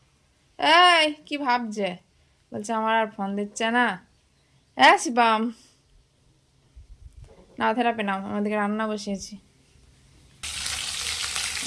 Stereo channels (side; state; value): both; identical; correlation 1.00